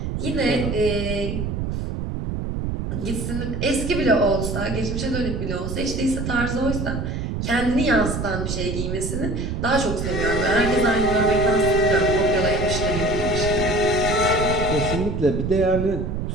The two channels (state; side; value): noise; right; rumble, 3 dB below the sound